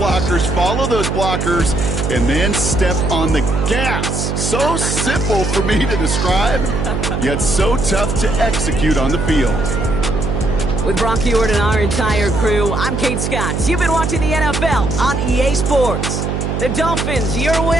follow those blockers, and then step on the gas. So simple for me to describe, yet so tough to execute on the field. With Brock Heward and our entire crew, I'm Kate Scott. You've been watching the NFL on EA Sports. The Dolphins, your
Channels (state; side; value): noise; right; hum, 1 dB below the sound